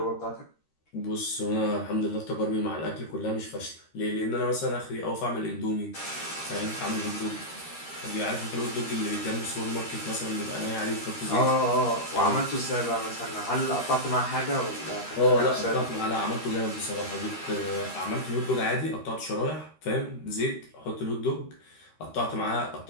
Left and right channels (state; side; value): late; right; 13 ms